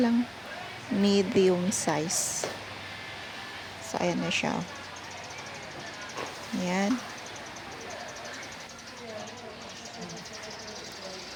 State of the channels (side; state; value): both; identical; correlation 1.00